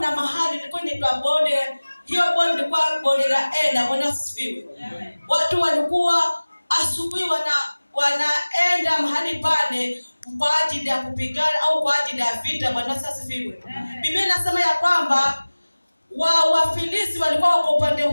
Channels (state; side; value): inverted; both; correlation -1.00